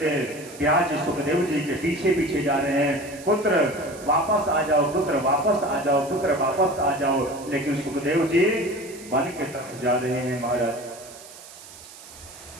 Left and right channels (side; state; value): right; noise; hiss, 18 dB below the sound